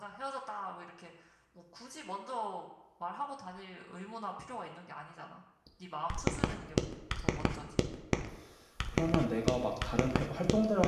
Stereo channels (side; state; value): both; identical; correlation 1.00